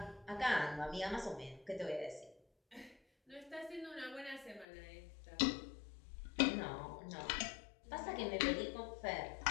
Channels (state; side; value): drops out; right; at 4.7 s